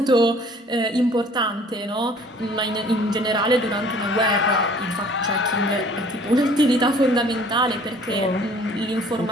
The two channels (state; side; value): normal; both; correlation 0.53